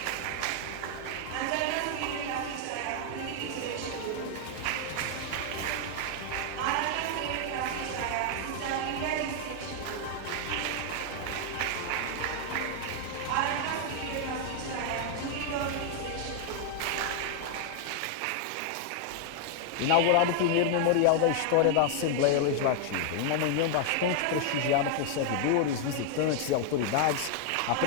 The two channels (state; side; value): different; both; correlation 0.00